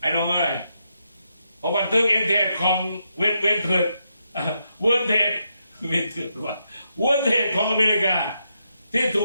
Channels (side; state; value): both; inverted; correlation -0.82